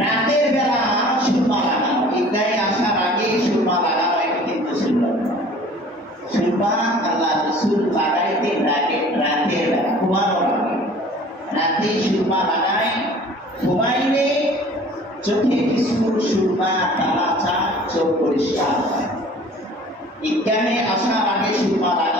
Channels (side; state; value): both; normal; correlation 0.48